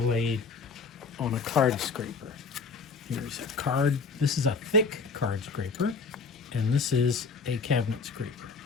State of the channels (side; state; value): right; quieter; 4.7 dB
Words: on a card scraper. Here's a card. This is a thick card scraper, and this is a cabinet scraper.